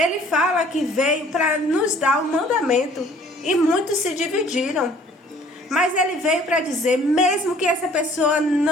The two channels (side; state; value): both; normal; correlation 0.55